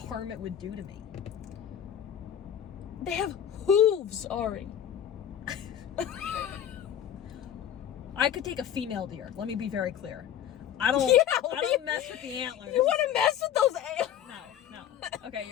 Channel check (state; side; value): quieter; right; 9.9 dB